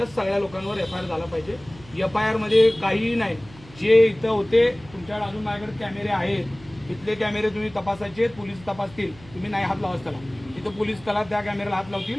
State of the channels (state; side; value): noise; right; hum, 21 dB below the sound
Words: सगळ्या लोकांवर एफआयआर झाला पाहिजे. एफआयआर मध्ये काहीही नाही. जे इथं होते तुमच्याकडे अजून माझ्याकडे कॅमेरे आहेत, इथले कॅमेरे तुम्ही तपासायचे, पोलीस तपासतील. तुम्ही नाही हात लावाच त्याला, तिथं पोलीस त्याला त्या कॅमेऱ्याला हात लावतील.